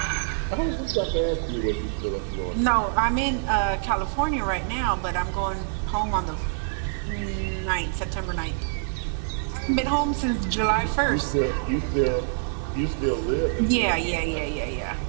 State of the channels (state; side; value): silent; left; digital silence